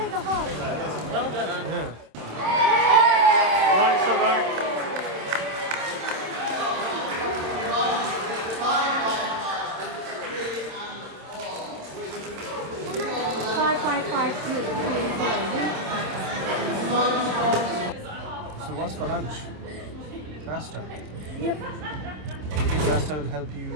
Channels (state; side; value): late; left; 27 ms